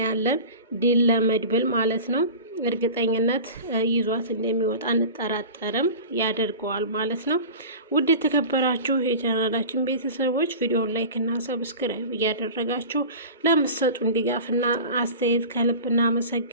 ድል ለመድብል ማለት ነው። እርግጠኝነት ይዟት እንደሚወጣ እንጠራጠርም ያደርገዋል ማለት ነው። ውድ የተከበራችሁ የቻናላችን ቤተሰቦች ቪዲዮውን ላይክ እና ሰብስክራይብ እያደረጋችሁ ለምትሰጡን ድጋፍና አስተያየት ከልብ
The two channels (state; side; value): inverted; both; correlation -0.35